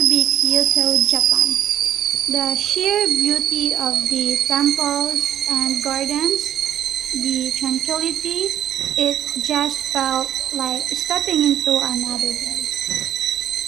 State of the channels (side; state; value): left; quieter; 10.8 dB